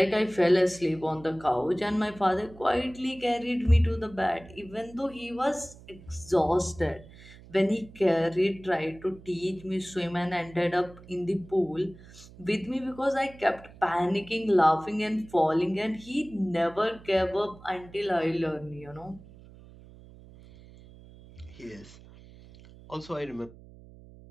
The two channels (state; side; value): noise; right; hum, 20 dB below the sound